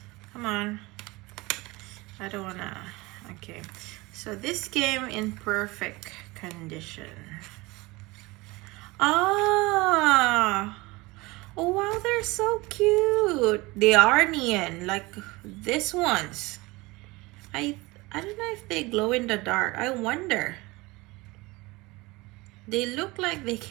Come on. I don't wanna. Okay, so this came in perfect condition. Ah, oh wow, they're so cute. They are neon, like this ones. I don't know if they glow in the dark. I wonder. They look like they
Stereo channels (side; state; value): left; quieter; 22.7 dB